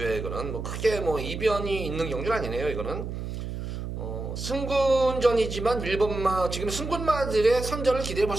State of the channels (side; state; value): right; noise; hum, 6 dB below the sound